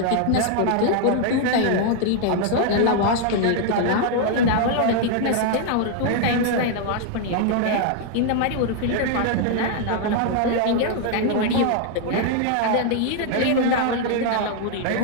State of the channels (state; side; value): different; both; correlation 0.00